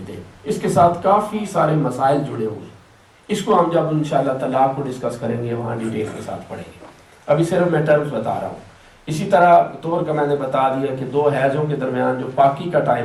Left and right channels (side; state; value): both; identical; correlation 1.00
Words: ہیں۔ اس کے ساتھ کافی سارے مسائل جڑے ہوئے، اس کو ہم جب انشاءاللہ طلاق کو ڈسکس کریں گے وہاں ڈیٹیل کے ساتھ پڑھیں گے، ابھی صرف میں ٹرمز بتا رہا ہوں۔ اسی طرح طہر کا میں نے بتا دیا کہ دو حیضوں کے درمیان جو پاکی کا